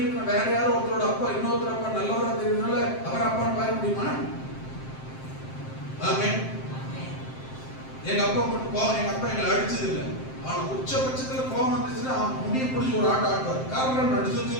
வேற யாரோ ஒருத்தரோட அப்பா இன்னொருத்தர் அப்பா நல்லவரா தெரியுதுனால அவர் அப்பான்னு பாய முடியுமா? ஆமென். எங்க அப்பா எங்களை அடிச்சது இல்லை, ஆனா உச்சபட்சத்துல கோபம் வந்துச்சுன்னா முடிய பிடிச்சி ஒரு ஆட்டுவார். காரணம் நடிச்சு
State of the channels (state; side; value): late; right; 7.6 ms